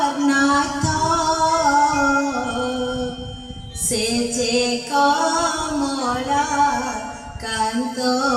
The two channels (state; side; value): identical; both; correlation 1.00